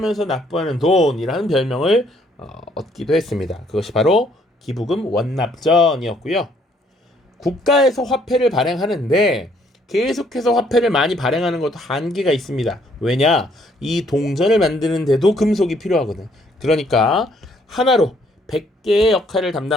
납부하는 돈이라는 별명을 얻기도 했습니다. 그것이 바로 기부금 원납전이었고요. 국가에서 화폐를 발행하는데 계속해서 화폐를 많이 발행하는 것도 한계가 있습니다. 왜냐? 이 동전을 만드는데도 금속이 필요하거든. 그러니까 하나로 100개의 역할을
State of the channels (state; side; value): normal; both; correlation 0.66